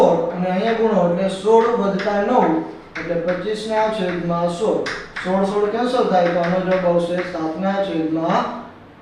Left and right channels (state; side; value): identical; both; correlation 1.00